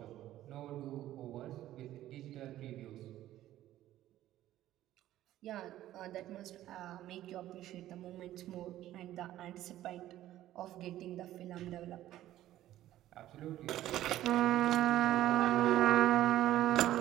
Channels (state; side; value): quieter; left; 13.7 dB